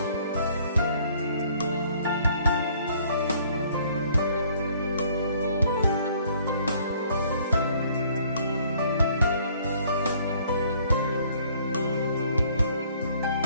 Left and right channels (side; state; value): both; inverted; correlation -0.60